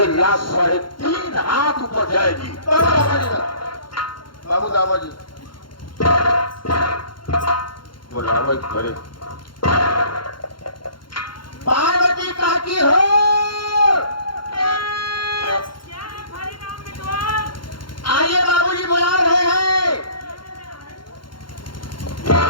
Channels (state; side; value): late; right; 0.72 ms